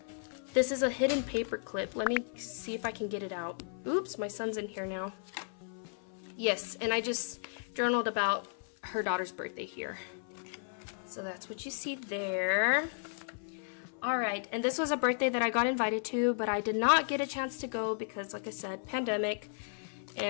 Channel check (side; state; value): right; silent; 55 dB below the other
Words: This is a hidden paper clip. Let me see if I can get it out. Oops, my son's in here now. Yes, and I just journaled about her daughter's birthday here. So that's what you see there. Alright, and this was a birthday that I got invited to, but I did not get a chance to go because, like I said, pandemic.